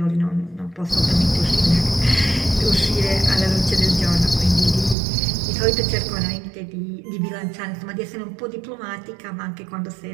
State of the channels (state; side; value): drops out; left; at 5.0 s